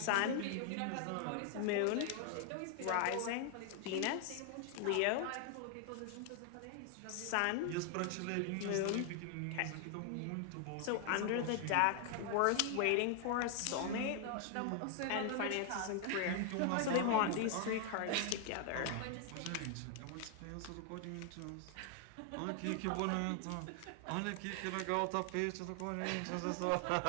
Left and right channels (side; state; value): both; different; correlation 0.00